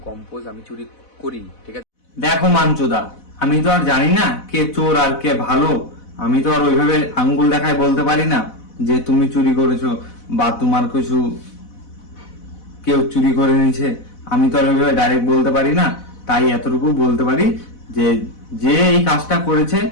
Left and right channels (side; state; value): right; late; 4.0 ms